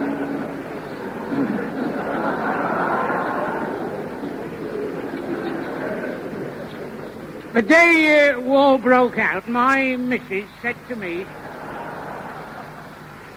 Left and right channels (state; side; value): identical; both; correlation 1.00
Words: The day war broke out, my missus said to me,